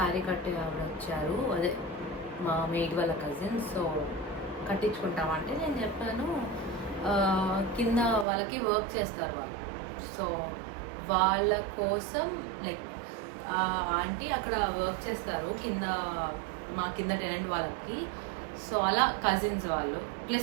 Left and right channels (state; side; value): drops out; left; at 8.2 s